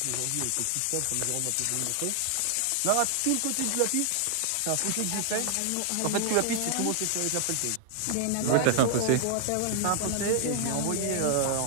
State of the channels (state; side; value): different; both; correlation 0.00